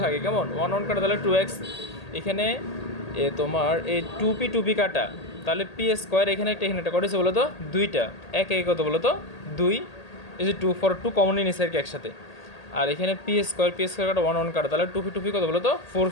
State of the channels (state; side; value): late; right; 1.8 ms